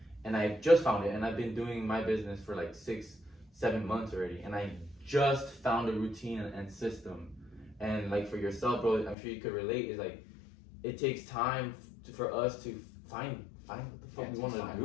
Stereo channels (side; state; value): right; drops out; at 9.2 s